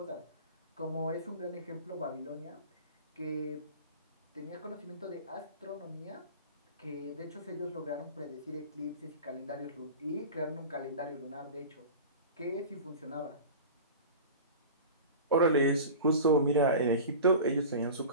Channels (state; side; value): inverted; both; correlation -0.35